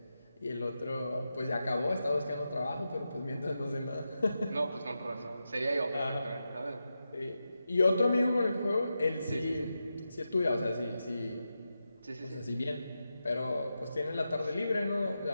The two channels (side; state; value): both; inverted; correlation -0.89